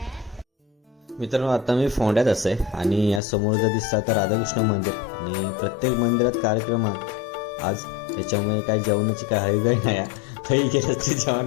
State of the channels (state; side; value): drops out; right; at 3.2 s